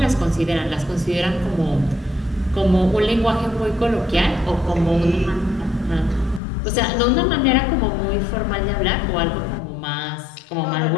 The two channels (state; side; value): drops out; right; at 6.4 s